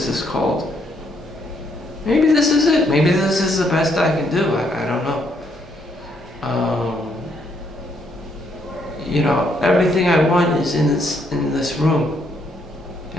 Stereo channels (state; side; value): normal; both; correlation 0.72